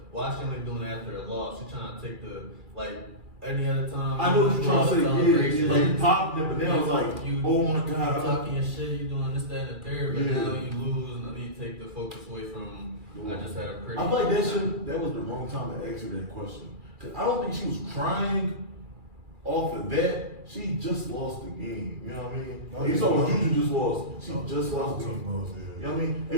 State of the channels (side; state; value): left; late; 2.4 ms